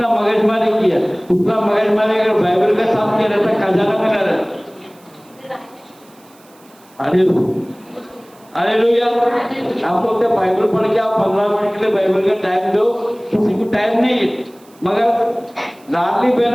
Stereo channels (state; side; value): noise; right; hiss, 29 dB below the sound